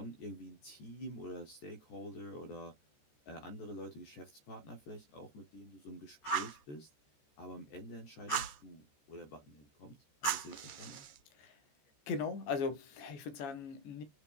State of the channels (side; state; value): right; late; 14 ms